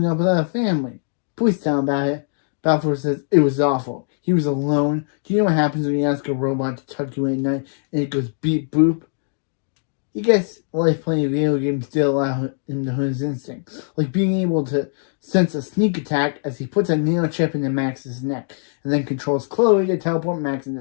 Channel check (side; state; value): right; silent; digital silence